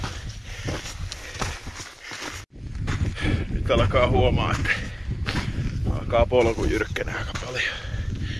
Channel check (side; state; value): both; identical; correlation 1.00